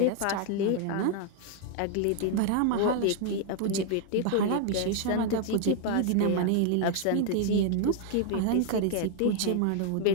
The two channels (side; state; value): both; different; correlation 0.00